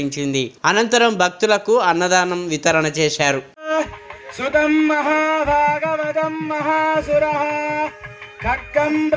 అనంతరం భక్తులకు అన్నదానం వితరణ చేశారు. సుతం మహాభాగవతం మహాసురః ఖడ్గం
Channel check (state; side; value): identical; both; correlation 1.00